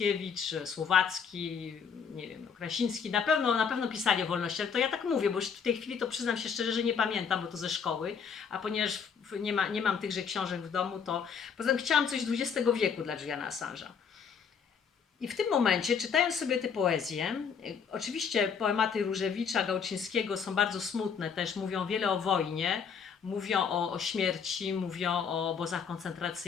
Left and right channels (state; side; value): quieter; right; 6.6 dB